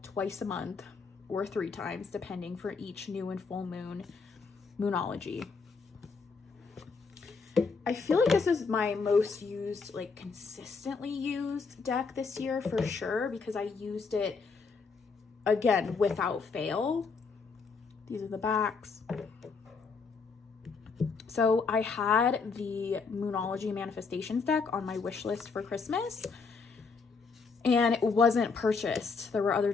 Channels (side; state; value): right; quieter; 4.8 dB